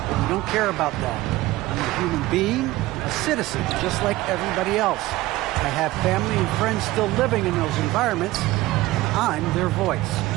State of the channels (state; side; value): quieter; left; 17.8 dB